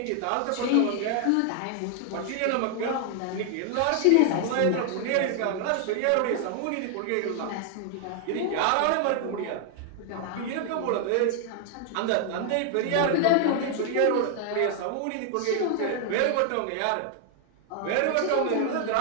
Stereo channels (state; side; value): different; both; correlation 0.00